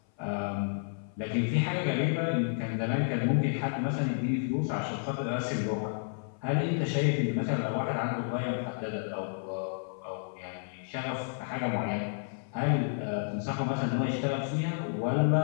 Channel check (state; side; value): silent; right; 57 dB below the other